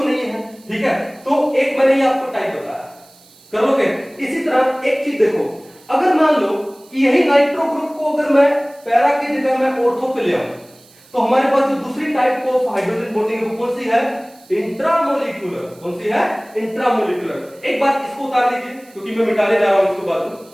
नहीं है, ठीक है। तो एक मैंने ये आपको टाइप बताया, कर लोगे। इसी तरह एक चीज देखो, अगर मान लो कि यही नाइट्रो ग्रुप को अगर मैं पैरा की जगह में ऑर्थो पे ले आऊं, तो हमारे पास जो दूसरी टाइप ऑफ हाइड्रोजन बॉन्डिंग है वो कौन सी है, इंट्रामोलिकुलर। कौन सी है, इंट्रामोलिकुलर। एक बार इसको उतार लीजिए क्योंकि मैं मिटाने जा रहा हूं इसको बाद में,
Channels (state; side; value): noise; right; hiss, 27 dB below the sound